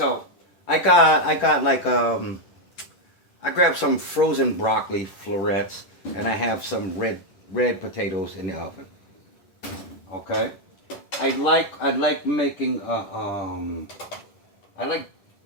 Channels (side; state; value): right; late; 10 ms